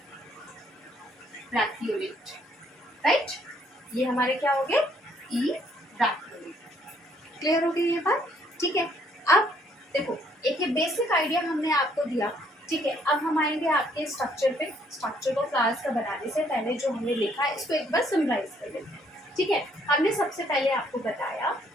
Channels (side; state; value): both; normal; correlation 0.66